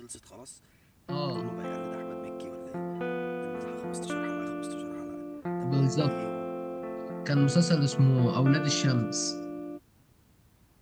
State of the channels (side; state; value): both; identical; correlation 1.00